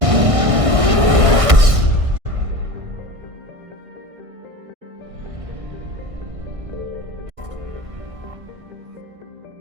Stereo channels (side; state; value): left; late; 1.6 ms